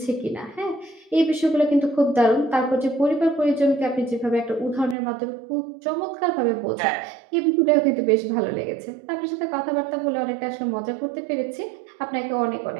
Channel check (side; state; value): left; drops out; at 5.0 s